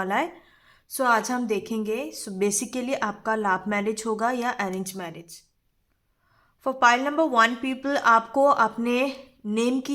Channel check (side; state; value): both; identical; correlation 1.00